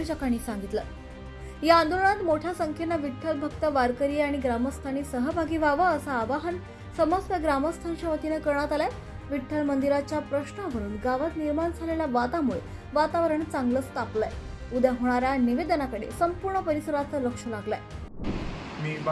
सांगितलं। या आंदोलनात मोठ्या संख्येने विठ्ठल भक्त वारकरी आणि ग्रामस्थांनी सहभागी व्हावं असं आवाहन समस्त ग्रामस्थांच्या वतीने करण्यात आलंय। विठ्ठल मंदिराच्या प्रश्नावरून गावात निर्माण झालेल्या वादामुळे वातावरण चांगलंच तापलंय। उद्या होणाऱ्या निवेदनाकडे संपूर्ण परिसराचं लक्ष लागलंय। मी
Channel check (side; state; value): both; identical; correlation 1.00